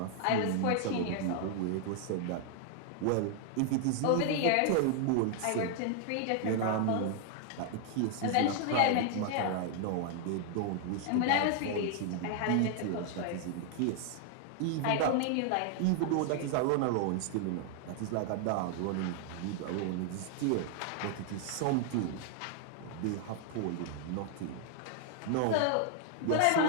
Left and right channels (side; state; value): both; different; correlation 0.00